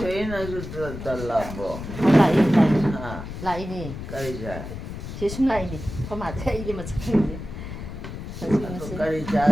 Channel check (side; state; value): left; noise; rumble, 9 dB below the sound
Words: 달라고. 라이니. 까리자. 제숨 라이니. 그만해 이게 뭐 착한데. 까리자